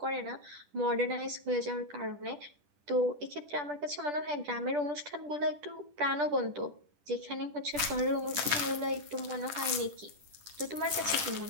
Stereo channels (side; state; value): left; late; 10 ms